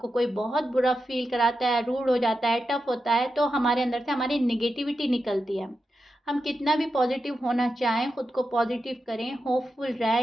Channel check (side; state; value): both; normal; correlation 0.89